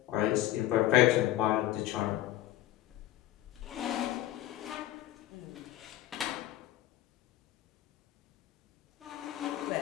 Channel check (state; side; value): quieter; right; 14.3 dB